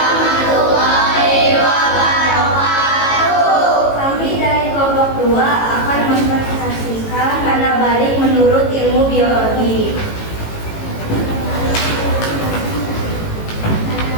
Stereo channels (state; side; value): late; right; 18 ms